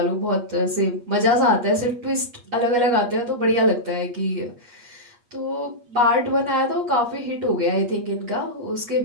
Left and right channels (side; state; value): left; late; 8.4 ms